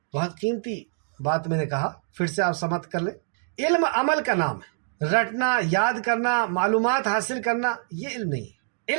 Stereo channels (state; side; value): silent; left; digital silence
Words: بہت قیمتی بات میں نے کہا، پھر سے آپ سمجھ کر لیں۔ علم عمل کا نام ہے، رٹنا، یاد کرنا، معلومات حاصل کرنا، یہ علم نہیں ہے۔